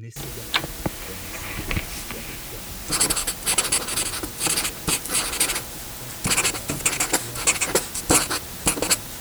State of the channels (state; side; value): identical; both; correlation 1.00